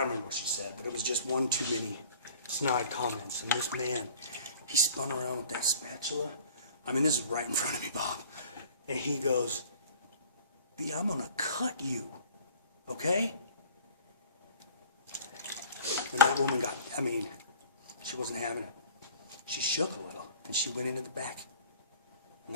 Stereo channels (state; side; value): inverted; both; correlation -0.48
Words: remember what she said, but it was just one too many snide comments. And this man, he spun around with that spatula. I mean, this is right in front of me, Bob. And he goes, B, I'm gonna cut you, okay? And that woman got, I mean, she wasn't having it. She shook a little, and she went into the back. And